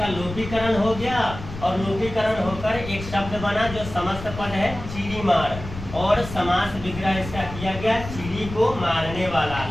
लोपीकरण हो गया और लोपीकरण होकर एक शब्द बना जो समस्त पद है चिड़ीमार। और समास विग्रह इसका किया गया चिड़ी को मारने वाला।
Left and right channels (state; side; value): noise; left; rumble, 11 dB below the sound